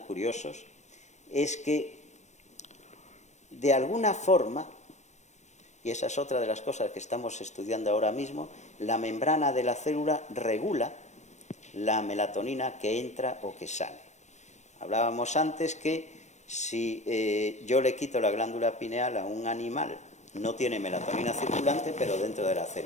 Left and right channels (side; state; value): right; late; 0.34 ms